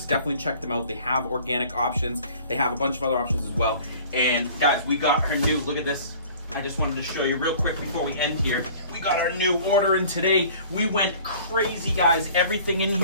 definitely check them out. They have organic options. They have a bunch of other options as well. And guys, we got our new, look at this. I just wanted to show you real quick before we end here. We got our new order in today. We went crazy, guys. Everything in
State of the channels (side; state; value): both; inverted; correlation -0.48